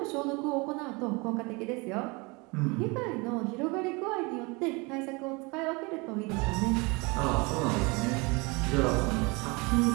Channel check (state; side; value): quieter; left; 27.3 dB